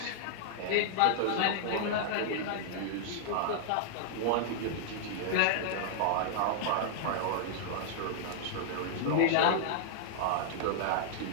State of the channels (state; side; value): different; both; correlation -0.01